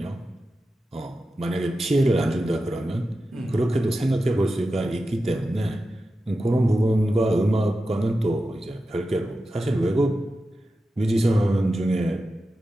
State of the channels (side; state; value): both; normal; correlation 0.92